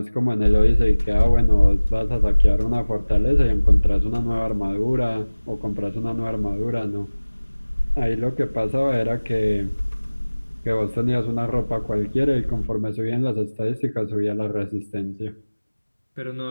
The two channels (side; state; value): both; inverted; correlation -1.00